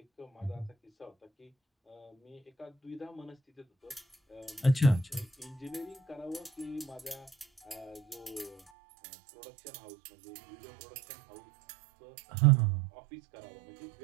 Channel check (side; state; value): left; drops out; at 8.6 s